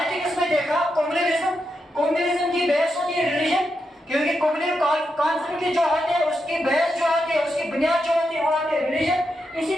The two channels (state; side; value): normal; both; correlation 0.85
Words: में देखा कम्युनलिज्म की बेस होती है रिलीजन, क्योंकि कम्युनल कॉन्फ्लिक्ट जो होते हैं उसकी बेस जो होती है, उसकी बुनियाद जो होती है वो होती है रिलीजन। इसी